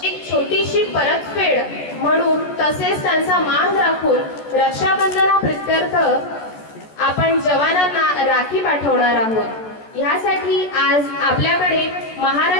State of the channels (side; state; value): right; late; 14 ms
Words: छोटीशी परतफेड म्हणून तसेच त्यांचा मान राखून रक्षाबंधनाप्रित्यर्थ आपण जवानांना राखी पाठवणार आहोत। यासाठी आज आपल्याकडे